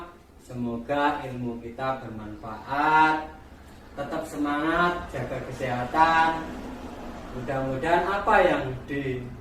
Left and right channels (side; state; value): both; identical; correlation 1.00